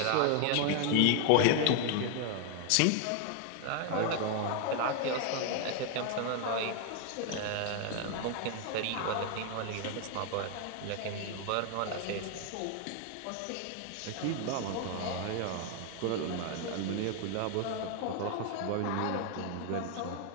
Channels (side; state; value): both; different; correlation 0.01